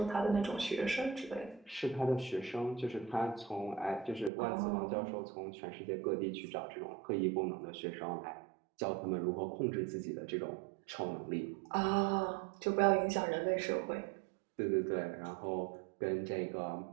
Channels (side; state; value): left; drops out; at 4.3 s